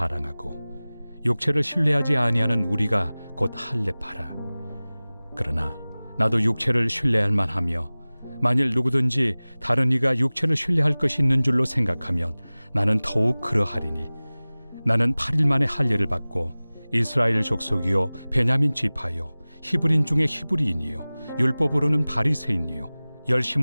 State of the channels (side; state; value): both; inverted; correlation -0.99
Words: 육체를 신뢰하지 아니하는 우리가 곧 할례파라. 그러나 나도 육체를 신뢰할 만하며 만일 누구든지 다른 이가 육체를 신뢰할 것이 있는 줄로 생각하면 나는 더욱 그러하리니 나는 8일 만에 할례를 받고 이스라엘 족속이요 베냐민 지파요 히브리인 중에 히브리인이요 율법으로는 바리새인이요